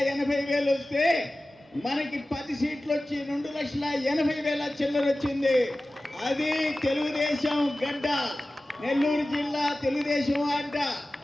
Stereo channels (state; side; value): normal; both; correlation 0.96